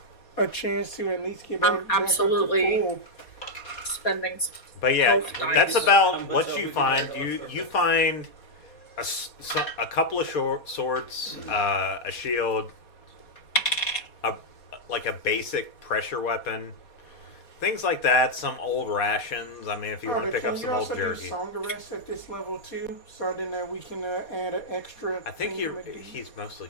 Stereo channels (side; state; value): right; late; 4.2 ms